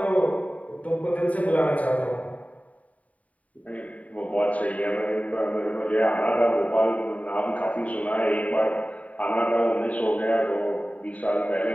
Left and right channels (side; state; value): right; late; 0.069 ms